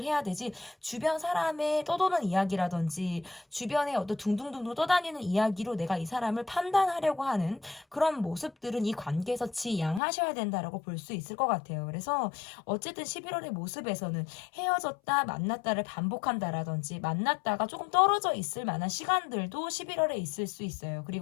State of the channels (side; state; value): right; drops out; at 10.0 s